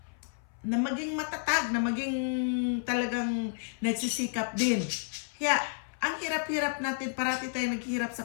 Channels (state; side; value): silent; right; 56 dB below the other